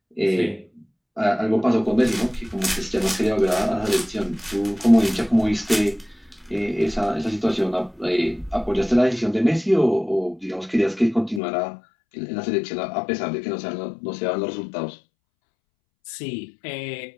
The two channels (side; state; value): right; drops out; at 11.4 s